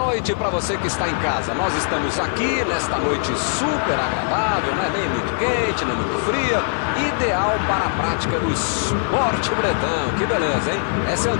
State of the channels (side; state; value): right; silent; 65 dB below the other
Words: noite para você que está em casa. Nós estamos aqui nesta noite super agradável, não é nem muito quente, nem muito fria. Ideal para a prática do esporte bretão. Que beleza, hein? Essa é